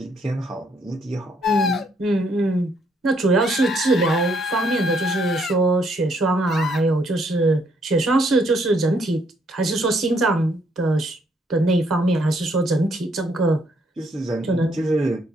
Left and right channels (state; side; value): normal; both; correlation 0.70